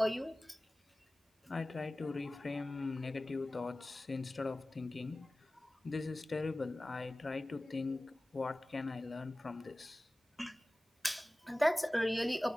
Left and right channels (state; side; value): normal; both; correlation 0.97